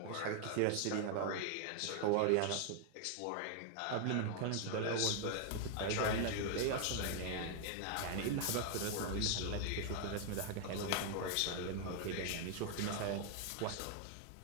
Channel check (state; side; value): different; both; correlation 0.00